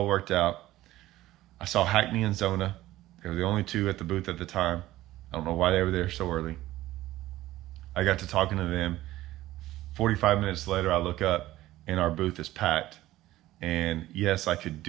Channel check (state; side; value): quieter; left; 15.8 dB